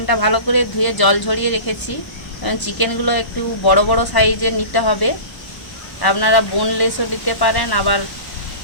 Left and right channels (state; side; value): late; right; 1.0 ms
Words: ভালো করে ধুয়ে জল ঝরিয়ে রেখেছি। চিকেনগুলো একটু বড় বড় সাইজের নিতে হবে। আপনারা বোনলেসও নিতে পারেন, আবার